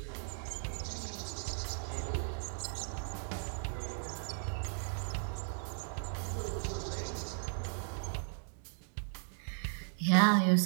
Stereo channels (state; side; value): silent; left; 53 dB below the other